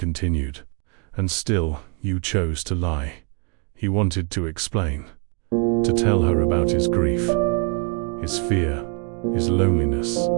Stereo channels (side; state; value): left; quieter; 34.8 dB